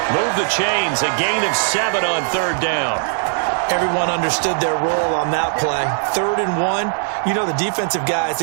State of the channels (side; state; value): left; silent; 59 dB below the other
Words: Move the chains, a gain of 7 on 3rd down. Everyone understood their role on that play. 3rd and 1. You know the defensive guys,